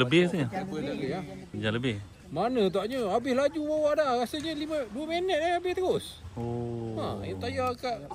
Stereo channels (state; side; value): identical; both; correlation 1.00